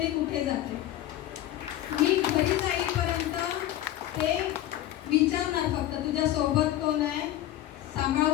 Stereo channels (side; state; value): right; quieter; 13.5 dB